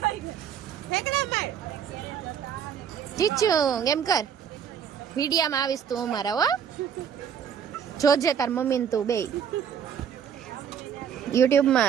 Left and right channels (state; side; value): quieter; left; 8.0 dB